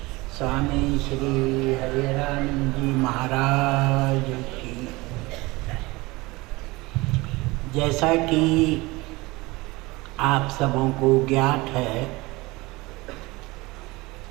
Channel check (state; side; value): quieter; left; 22.4 dB